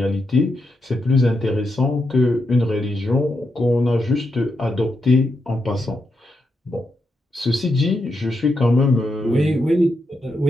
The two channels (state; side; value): normal; both; correlation 0.84